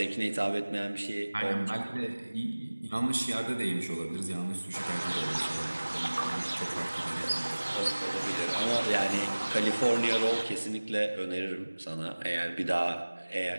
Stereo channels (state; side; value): inverted; both; correlation -1.00